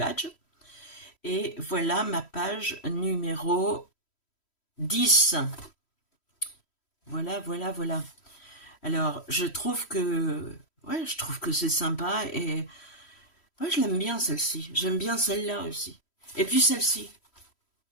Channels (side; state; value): right; late; 3.1 ms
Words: Et voilà ma page numéro 10. Voilà, voilà, voilà. Alors, je trouve que c'est sympa et ouais, je l'aime bien celle-ci. J'aime bien celle-là aussi. Et puis celle-ci.